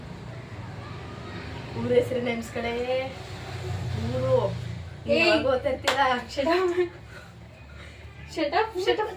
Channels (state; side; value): identical; both; correlation 1.00